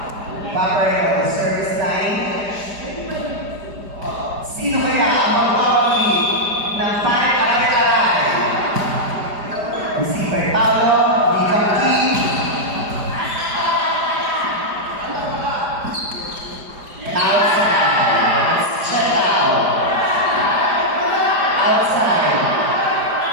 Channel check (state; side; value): late; left; 4.9 ms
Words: Sino kaya ang mag-awali ng pare-aray-aray? Receiver Paolo, Bicam King. Outside. Check out. Outside.